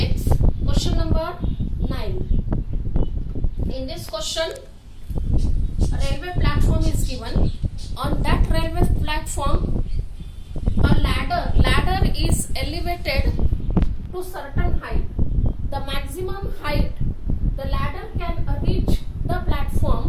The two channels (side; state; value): both; identical; correlation 1.00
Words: question number 9. In this question, a railway platform is given. On that railway platform, a ladder is elevated to certain height. The maximum height the ladder can reach the